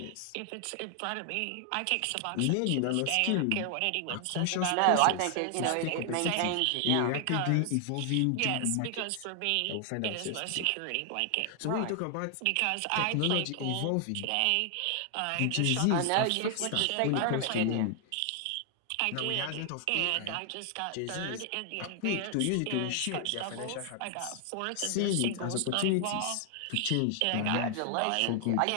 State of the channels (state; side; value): different; both; correlation 0.00